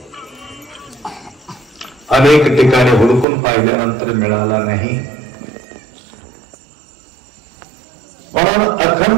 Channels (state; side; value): drops out; left; at 3.2 s